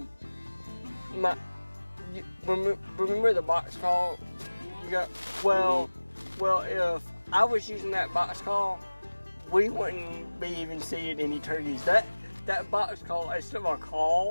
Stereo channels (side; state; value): both; inverted; correlation -1.00